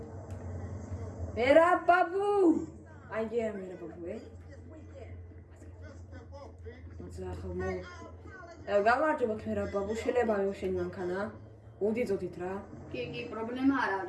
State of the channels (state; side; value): identical; both; correlation 1.00